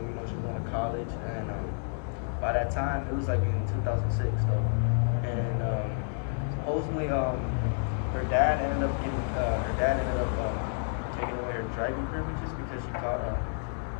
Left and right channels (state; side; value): silent; right; digital silence